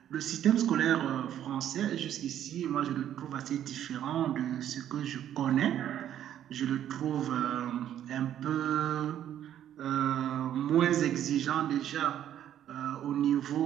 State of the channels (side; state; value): left; quieter; 10.8 dB